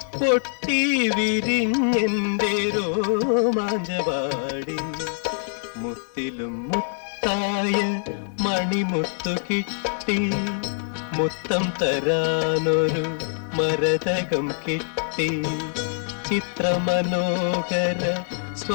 പൊട്ടി വിരിഞ്ഞെന്റെ രോമാഞ്ചവാടി. മുത്തിലും മുത്തായ മണിമുത്തു കിട്ടി, മുത്തം തരാനൊരു മരതകം കിട്ടി. ചിത്രമനോഹര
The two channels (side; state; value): right; silent; 60 dB below the other